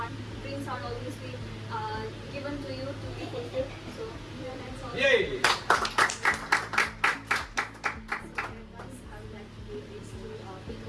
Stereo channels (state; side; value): identical; both; correlation 1.00